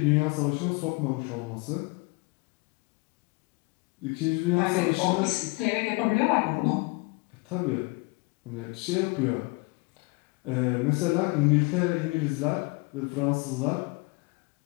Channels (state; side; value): quieter; right; 27.5 dB